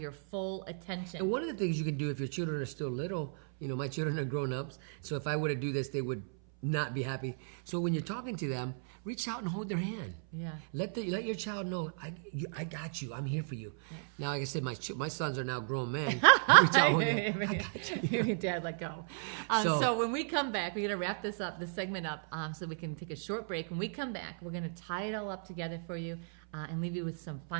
full attention. And one of the things you can do if your children are still little, you know, my children are grown-ups, so if I were to do this, they would not be happy. So when you're talking to them, reach out and hold their hand. Yeah. Let your child know, I got you. I'm here for you. Yeah. Now, like I said, my sons are now grown men. Reach out, hold them. I got you. Dad, let go. So when we come back, we're going to wrap this segment up, so we can take a short break. When we come back, we're going to tie it all up together for you and leave you with some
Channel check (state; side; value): silent; left; 55 dB below the other